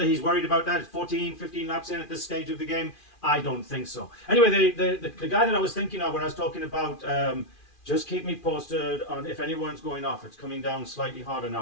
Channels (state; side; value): late; right; 2.4 ms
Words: he's worried about that 14, 15 laps in at this stage of the game, I don't think so. Anyway, the guy that I was thinking of when I was talking about just keep me posted on if anyone's going off. It's coming down slightly harder